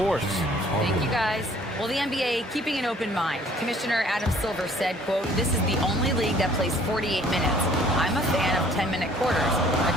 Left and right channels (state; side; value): normal; both; correlation 0.57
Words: Thank you, guys. Well, the NBA keeping an open mind. Commissioner Adam Silver said, quote, "This is the only league that plays 48 minutes. I'm a fan of 10-minute quarters. A